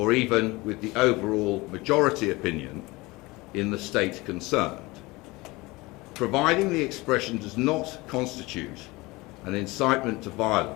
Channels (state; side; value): quieter; right; 22.4 dB